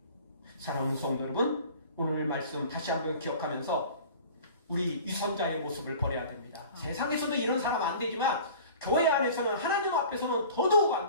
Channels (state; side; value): inverted; both; correlation -0.43